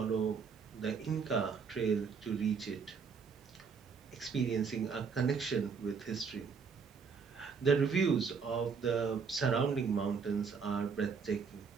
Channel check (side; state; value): left; quieter; 5.7 dB